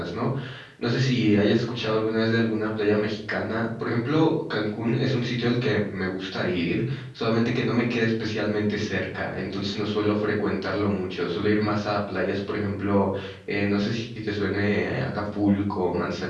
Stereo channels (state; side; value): identical; both; correlation 1.00